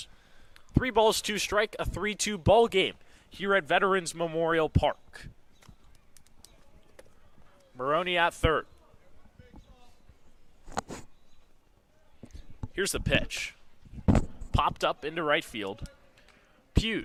3 balls, 2 strike, a 3-2 ball game here at Veterans Memorial Park. Maroney at third. Here's the pitch. Popped up into right field.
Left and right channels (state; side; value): identical; both; correlation 1.00